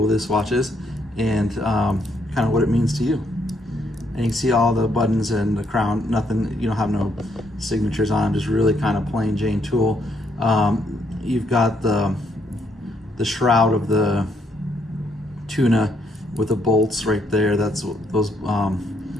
this watch is and kind of what it means to you. And you can see all the buttons and the crown, nothing, you don't have no signatures on them, just really kind of plain Jane tool. You've got the shroud of the tuna with the bolts right there. That's what those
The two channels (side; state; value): both; normal; correlation 0.73